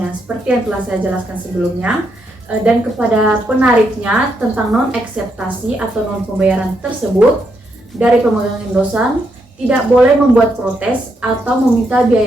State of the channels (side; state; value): both; normal; correlation 0.78